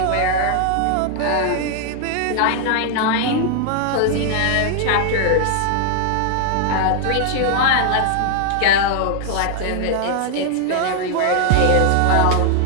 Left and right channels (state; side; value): different; both; correlation 0.00